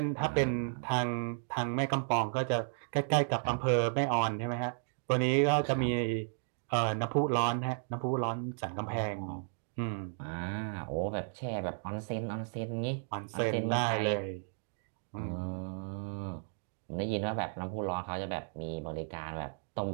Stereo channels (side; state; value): left; silent; digital silence